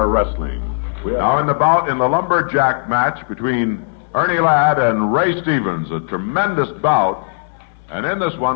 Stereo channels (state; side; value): silent; right; 68 dB below the other